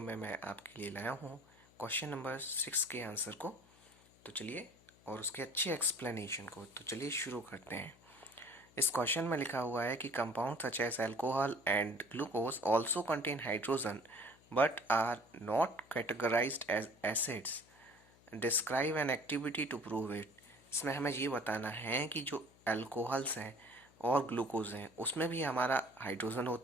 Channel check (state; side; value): noise; left; hum, 27 dB below the sound